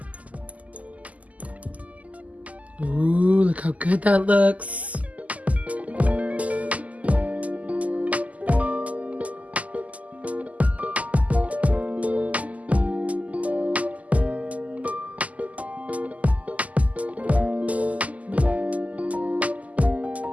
Ooh, look how good that looks.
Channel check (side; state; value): left; late; 0.073 ms